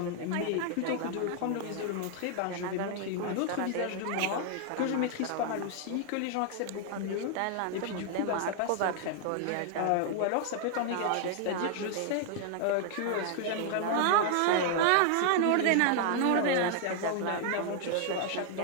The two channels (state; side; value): different; both; correlation 0.00